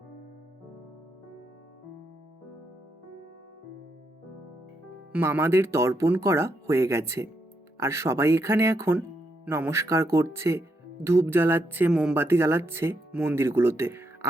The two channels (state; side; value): normal; both; correlation 0.80